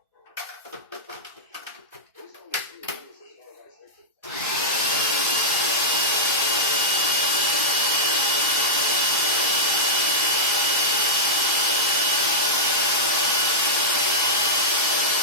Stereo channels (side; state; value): both; normal; correlation -0.09